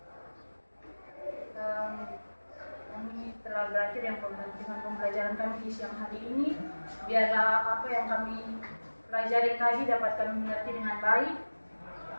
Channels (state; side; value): inverted; both; correlation -1.00